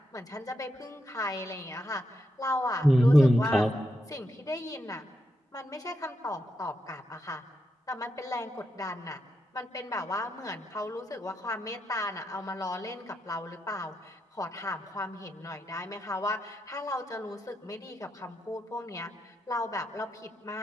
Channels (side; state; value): both; normal; correlation 0.84